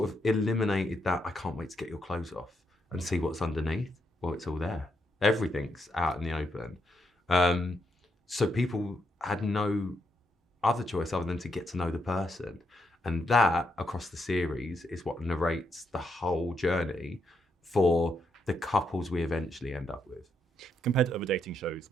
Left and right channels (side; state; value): both; normal; correlation 0.79